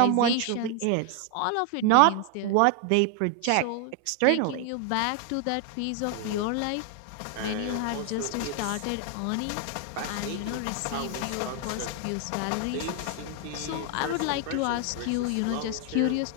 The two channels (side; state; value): both; different; correlation 0.00